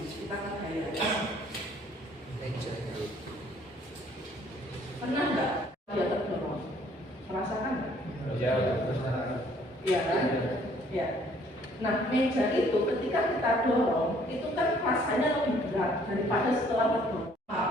Kita kan gaya. Pernah nggak dia terdorong? Merasakan nggak? Iya kan? Ya. Nah, meja itu ketika kita dorong, itu kan rasanya lebih berat daripada setelah terdorong.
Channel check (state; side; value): normal; both; correlation 0.61